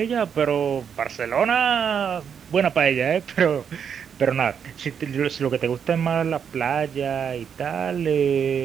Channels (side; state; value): left; quieter; 7.5 dB